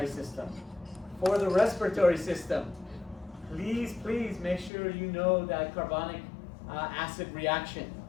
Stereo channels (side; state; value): right; drops out; at 4.7 s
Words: system. For the respiratory system, please make sure you know that carbonic acid reaction.